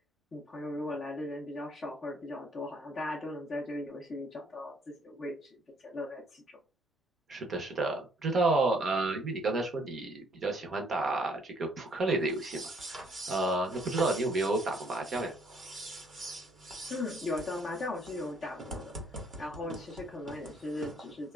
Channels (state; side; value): normal; both; correlation 0.65